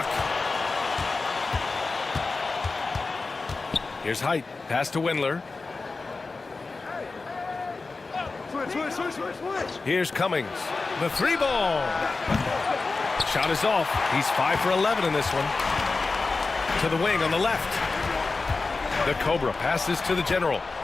Here's Height. Pass to Windler. Here's Cummings. The 3 ball. Shot is off. He's 5 for 11 in this one. To the wing on the left. The Cobra passes to the general.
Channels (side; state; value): right; quieter; 3.9 dB